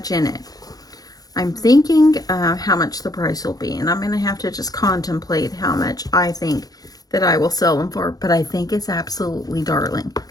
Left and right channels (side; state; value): right; late; 0.18 ms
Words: in it. I'm thinking how much the price will be, and I'm going to have to just contemplate how much I think that I will sell them for, but I think it's absolutely darling.